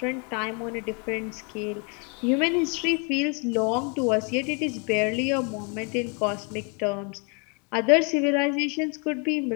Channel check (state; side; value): quieter; right; 35.4 dB